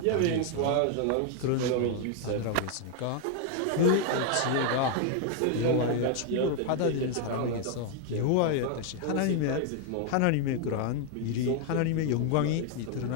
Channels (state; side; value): different; both; correlation 0.00